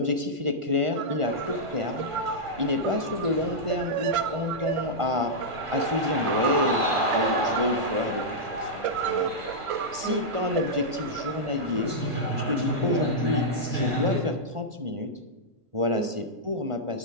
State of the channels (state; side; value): late; left; 1.5 ms